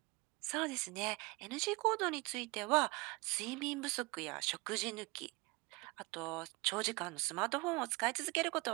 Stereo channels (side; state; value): left; quieter; 25.1 dB